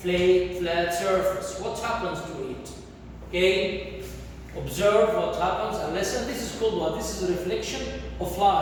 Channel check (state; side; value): identical; both; correlation 1.00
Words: surface? What happens to it? Okay, observe what happens and listen. This is called what? This is a reflection of